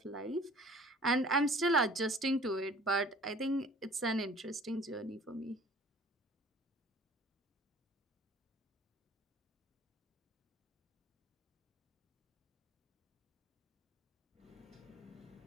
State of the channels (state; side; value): normal; both; correlation 0.49